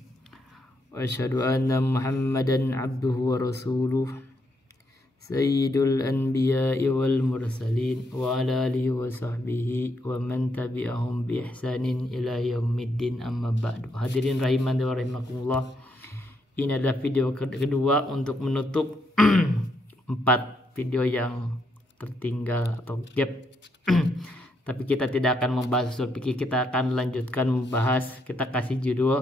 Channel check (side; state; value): both; normal; correlation 0.77